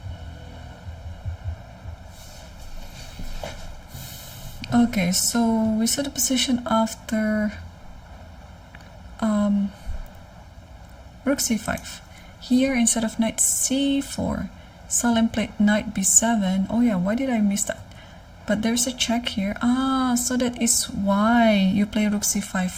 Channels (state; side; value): identical; both; correlation 1.00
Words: Okay, so we saw the position after rook c5. Here, instead of knight c4, Salim played knight b7. Oh yeah, why did I miss that? But there's a check here. Ah, so that is why you play rook c5